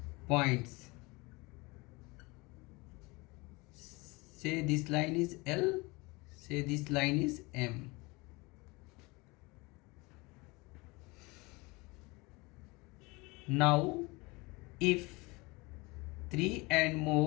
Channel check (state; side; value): quieter; right; 25.0 dB